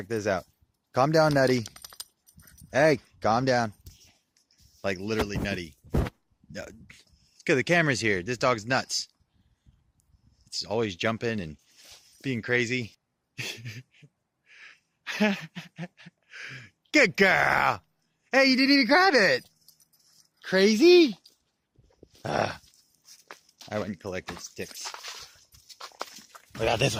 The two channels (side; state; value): both; identical; correlation 1.00